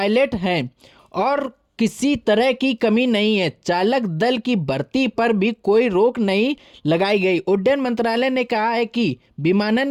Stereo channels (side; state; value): both; identical; correlation 1.00